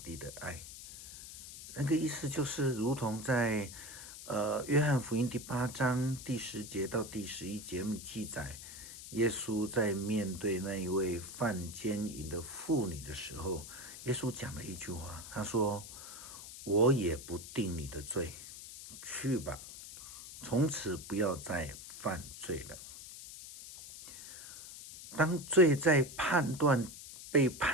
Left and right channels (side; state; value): left; noise; hiss, 13 dB below the sound